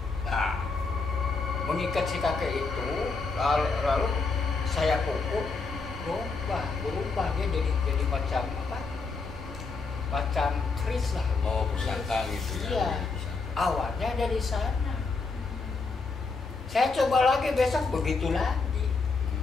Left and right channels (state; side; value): quieter; right; 4.3 dB